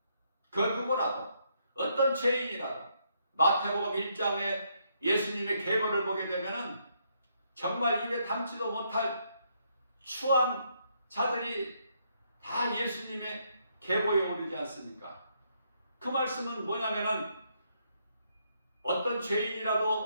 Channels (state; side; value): inverted; both; correlation -0.74